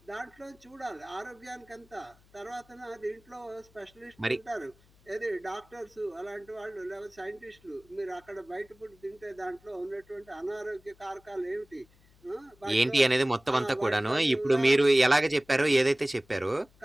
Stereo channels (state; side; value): noise; left; hum, 29 dB below the sound